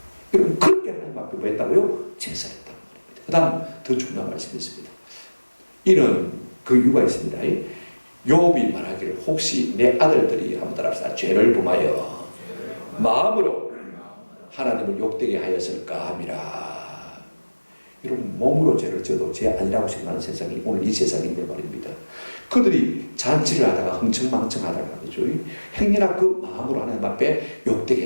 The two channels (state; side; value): inverted; both; correlation -1.00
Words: 여러분 그렇게 하나님 앞에 뭐 했다고요? 제사했단 말입니다. 그 다음 더 중요한 말씀이 있습니다. 이는 그 이유가 있습니다. 욥이 말하기를 혹시 내 아들들이 한번 따라합시다. 죄를 범하여 마음으로 하나님을 욕되게 하였을까 함이라. 여러분 몸으로 죄를 져도 죄 아니라고 생각하는 세상이 오늘 이 세상인데 말입니다. 그들이 잔치를 하다가 흥청망청하다가 그죠? 행여나 그 마음으로 하나님 앞에 욕되게